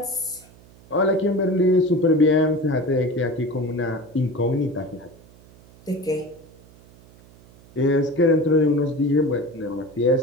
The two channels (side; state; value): right; noise; hum, 25 dB below the sound